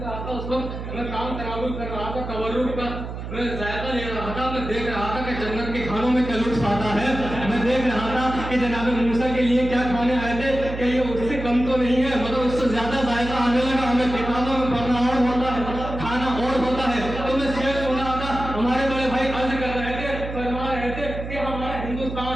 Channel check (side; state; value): right; noise; hum, 8 dB below the sound